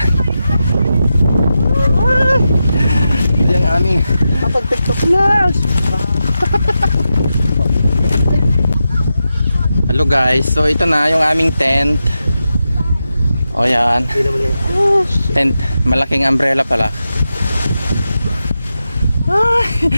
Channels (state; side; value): inverted; both; correlation -0.89